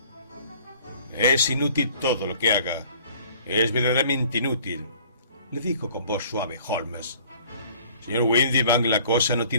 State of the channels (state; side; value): inverted; both; correlation -0.53